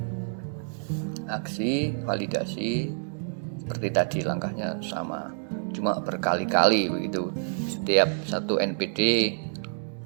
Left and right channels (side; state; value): left; silent; digital silence